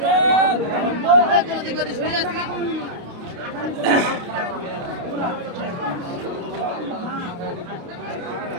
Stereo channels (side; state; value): left; late; 29 ms